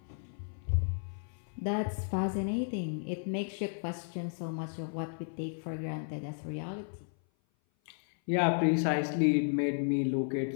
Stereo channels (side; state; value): right; silent; 55 dB below the other